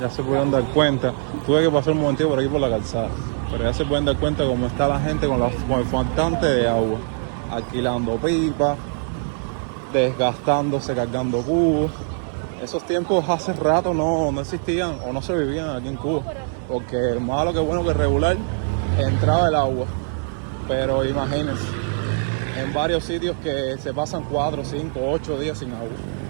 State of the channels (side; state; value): left; silent; digital silence